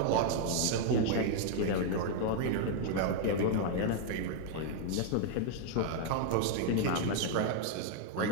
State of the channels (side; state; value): both; different; correlation 0.00